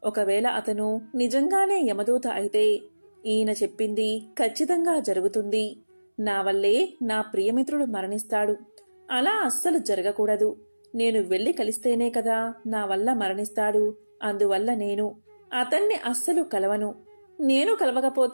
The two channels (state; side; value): inverted; both; correlation -1.00